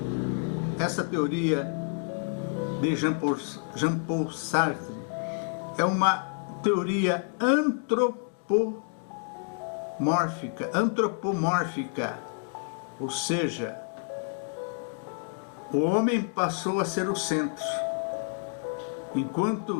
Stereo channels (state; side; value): silent; right; 59 dB below the other